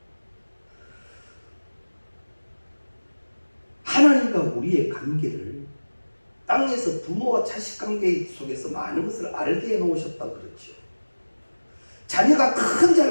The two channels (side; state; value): both; inverted; correlation -1.00